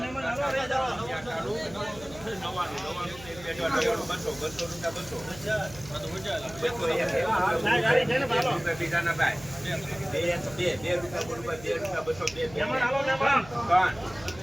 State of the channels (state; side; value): noise; right; hum, 18 dB below the sound